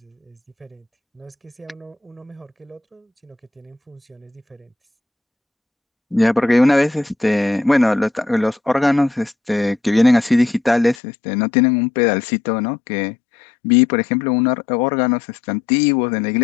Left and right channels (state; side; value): drops out; right; at 11.0 s